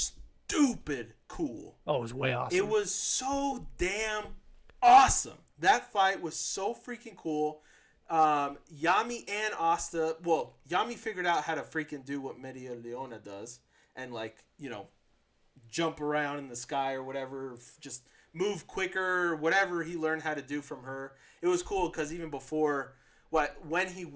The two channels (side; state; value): both; identical; correlation 1.00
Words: cool. Oh, it was way awesome. It was so damn awesome. That fight was so freaking cool. Yami and Asta, well, Yami figured out how to freaking do what Media Leona does and jump around in the sky or whatever, just move quicker, whatever he learned how to do from her. It was cool because even before, when he